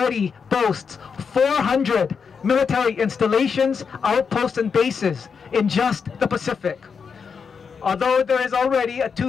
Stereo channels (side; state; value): right; quieter; 6.0 dB